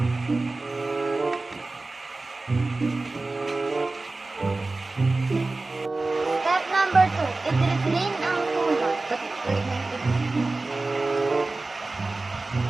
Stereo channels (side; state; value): left; quieter; 3.3 dB